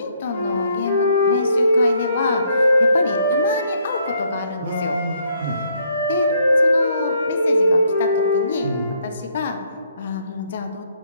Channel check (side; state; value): both; inverted; correlation -0.69